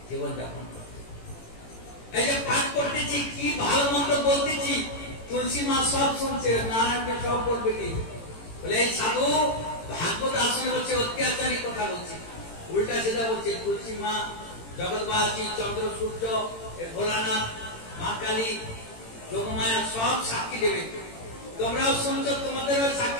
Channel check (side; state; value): right; late; 18 ms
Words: জীবনযাপন করতে। এই যে পাঠ করতেছি, কি ভালো মন্দ বলতেছি, তুলসী মা সব শুনছে। নারায়ণকে সব বলবে কি বলে, এই সাধু ভাগবত আসনে বলছে অত্যাচারী কথা বলছে, উল্টা সিধা বলছে। তুলসী মা, জগৎবাসী, চন্দ্র সূর্য, ভোলানাথ, মা কালী, যোগমায়া সব সাক্ষী দেবে। তোমরাও শুনছো, তোমাদেরও